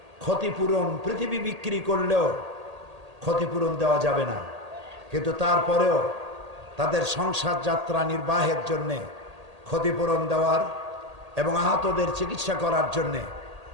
ক্ষতিপূরণ, পৃথিবী বিক্রি করলেও ক্ষতিপূরণ দেওয়া যাবে না, কিন্তু তারপরেও তাদের সংসার যাত্রা নির্বাহের জন্যে ক্ষতিপূরণ দেওয়ার এবং আহতদের চিকিৎসা করার জন্যে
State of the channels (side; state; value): left; late; 1.8 ms